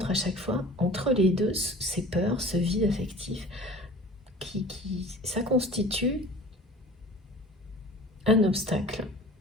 à chaque fois, entre les deux, ces peurs, ce vide affectif, ça constitue un obstacle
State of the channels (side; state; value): both; normal; correlation 0.43